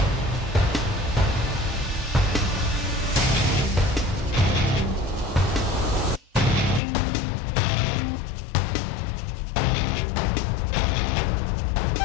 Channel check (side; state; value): right; drops out; at 6.8 s